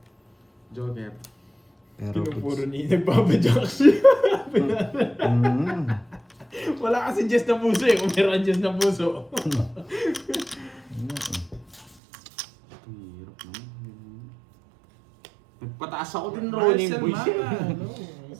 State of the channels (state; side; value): drops out; left; at 12.0 s